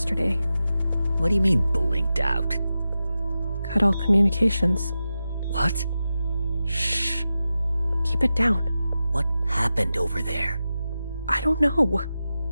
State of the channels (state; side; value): inverted; both; correlation -0.92